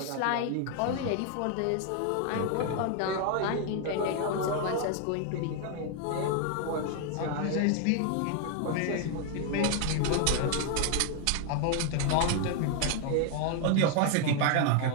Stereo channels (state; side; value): different; both; correlation 0.00